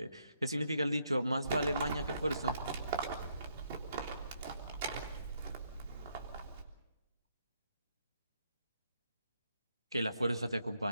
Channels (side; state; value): both; inverted; correlation -0.74